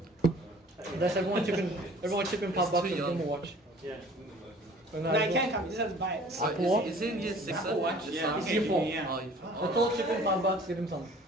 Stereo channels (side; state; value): both; normal; correlation 0.50